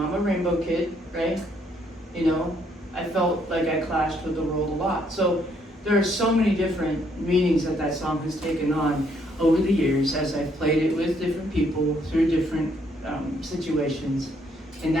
a rainbow kid, right? I felt like I clashed with the world a lot. So there are so many different meanings that song has taken on over the years as I've played it with different people through different situations. And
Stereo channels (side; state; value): both; normal; correlation 0.70